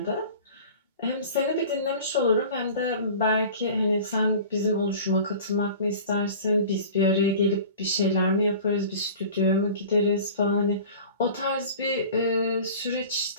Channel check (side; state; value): both; inverted; correlation -0.40